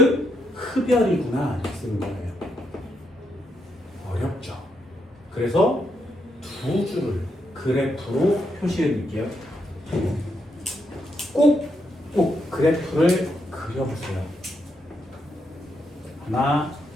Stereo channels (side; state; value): both; normal; correlation 0.79